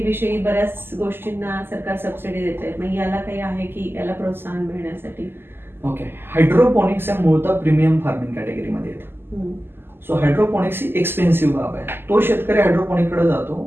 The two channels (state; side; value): late; left; 0.11 ms